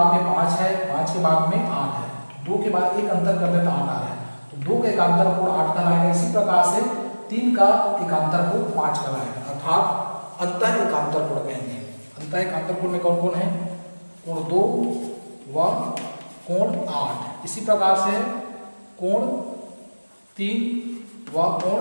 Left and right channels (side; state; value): both; inverted; correlation -1.00